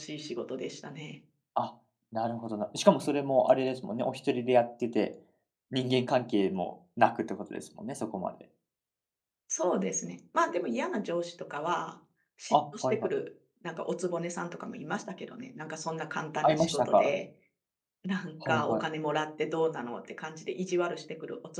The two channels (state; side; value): identical; both; correlation 1.00